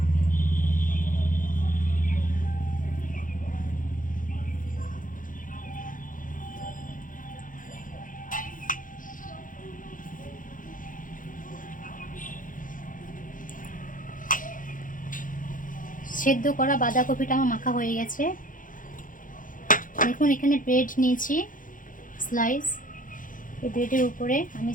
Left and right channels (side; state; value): right; late; 0.39 ms